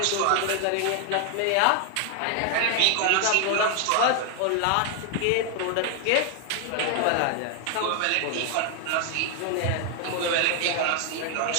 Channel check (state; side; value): different; both; correlation 0.00